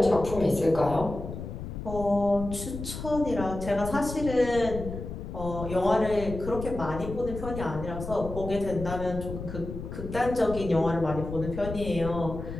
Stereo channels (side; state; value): left; noise; rumble, 8 dB below the sound